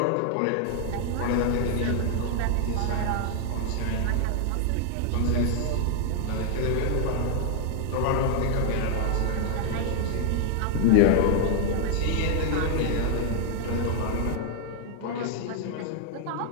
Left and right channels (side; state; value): both; different; correlation 0.00